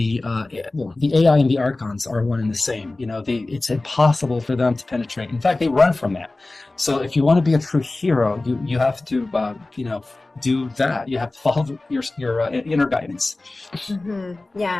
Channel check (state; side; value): quieter; right; 3.0 dB